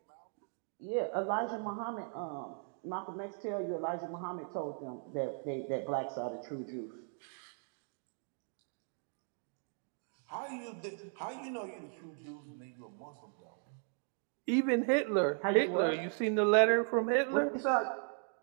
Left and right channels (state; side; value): silent; left; 53 dB below the other